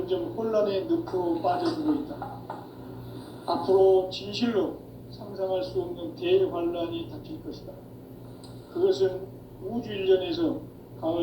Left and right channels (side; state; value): both; identical; correlation 1.00